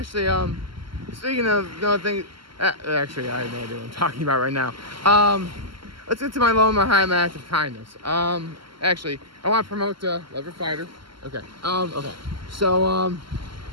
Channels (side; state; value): left; late; 0.74 ms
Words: speaking of no thing, actually, I have no idea what I'm talking about right now. Let's get to my low and my high, my act of kindness. Actually, I want to promote Lever Fighter. Okay. Okay. So,